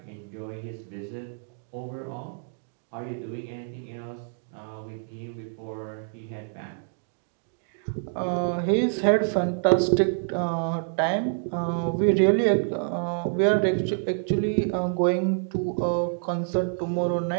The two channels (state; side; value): silent; left; digital silence